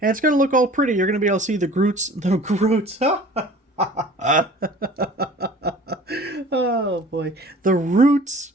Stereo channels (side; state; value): both; normal; correlation 0.46